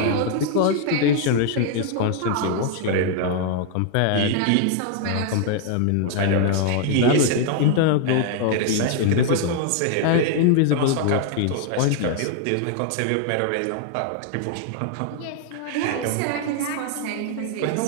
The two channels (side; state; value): both; different; correlation 0.00